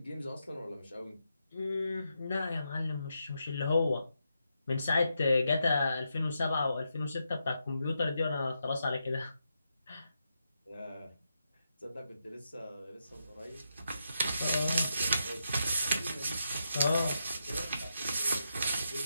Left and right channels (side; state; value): both; inverted; correlation -0.84